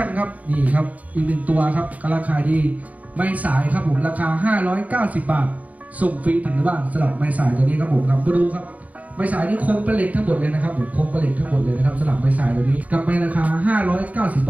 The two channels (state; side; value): late; left; 0.072 ms